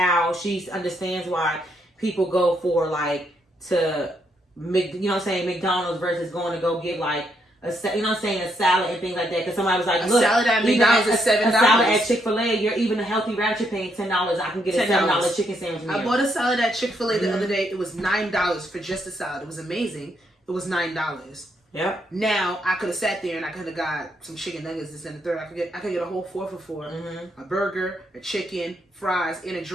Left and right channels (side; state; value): both; normal; correlation 0.76